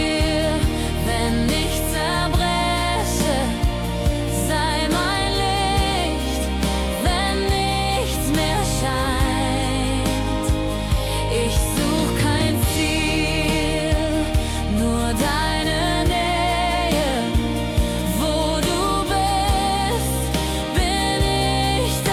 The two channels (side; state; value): both; identical; correlation 1.00